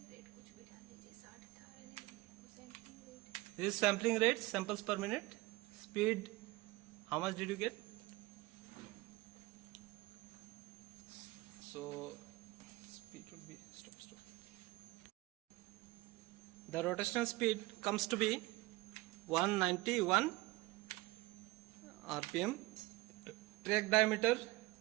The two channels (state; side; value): quieter; left; 20.9 dB